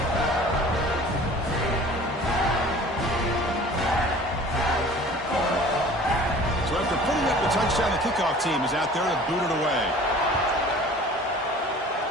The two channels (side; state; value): both; normal; correlation 0.46